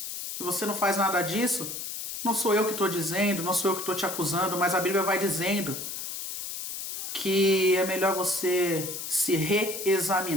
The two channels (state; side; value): noise; left; hiss, 6 dB below the sound